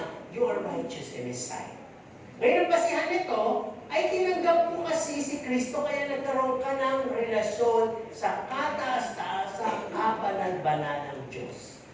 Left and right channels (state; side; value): identical; both; correlation 1.00